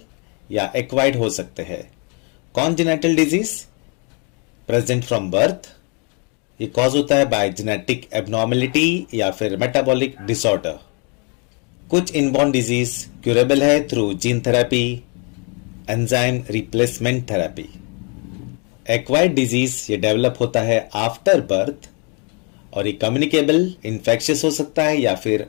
या acquired हो सकते हैं। Congenital disease present from birth, ये कॉज होता है बाय जेनेटिक एबनॉर्मेलिटी या फिर मेटाबॉलिक डिसऑर्डर। कुछ इनबॉर्न डिजीज क्यूरेबल है through gene therapy, enzyme replacement therapy. Acquired disease ये डेवलप होता है आफ्टर बर्थ और ये कम्युनिकेबल इन्फेक्शियस हो सकता है या फिर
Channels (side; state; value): right; quieter; 35.0 dB